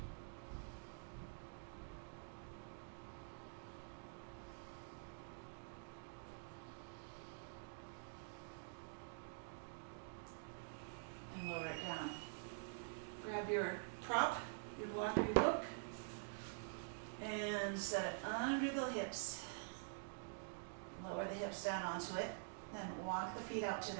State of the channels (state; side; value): silent; left; digital silence